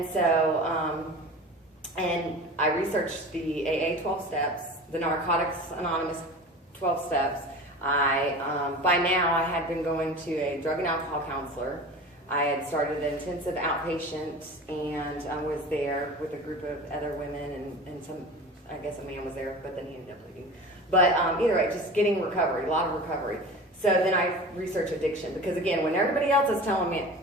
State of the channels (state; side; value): normal; both; correlation 0.35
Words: so, and I researched the AA 12 steps, the Narcotics Anonymous 12 steps. By now, I had been going to a drug and alcohol counselor. I had started an intensive outpatient, and I was there with a group of other women, and some, I guess a man was there, but then he ended up leaving. But either way, just getting recovery, a lot of recovery. So then I researched addiction, because again, when everybody else is telling me,